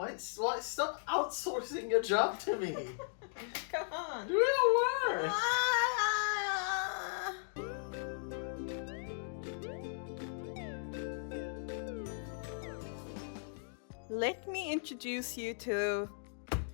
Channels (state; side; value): silent; right; digital silence